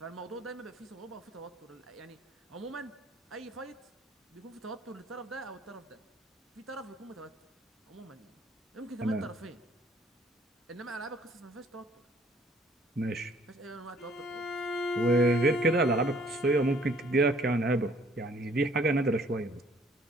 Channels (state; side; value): normal; both; correlation 0.59